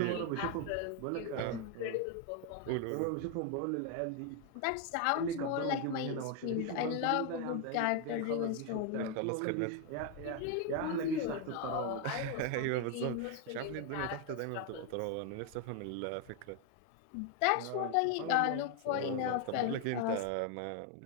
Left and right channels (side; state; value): both; different; correlation 0.01